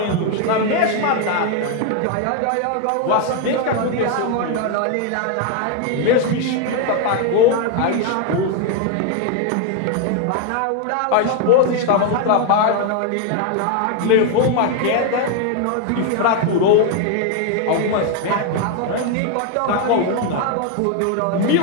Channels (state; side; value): different; both; correlation 0.01